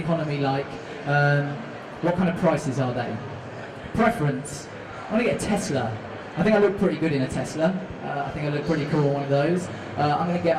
like? What kind of prices are they? Preference. I want to get a Tesla. I think I look pretty good in a Tesla. I think I look pretty cool on one of those.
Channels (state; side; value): identical; both; correlation 1.00